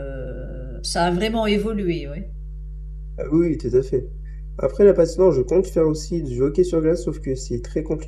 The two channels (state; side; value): identical; both; correlation 1.00